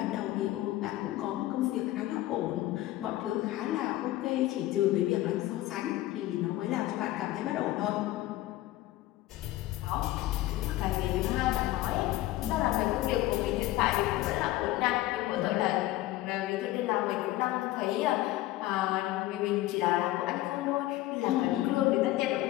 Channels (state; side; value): quieter; right; 16.2 dB